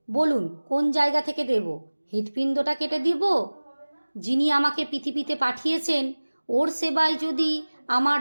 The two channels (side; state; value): both; inverted; correlation -1.00